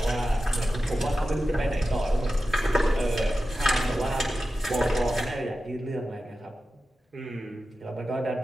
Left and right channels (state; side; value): normal; both; correlation 0.93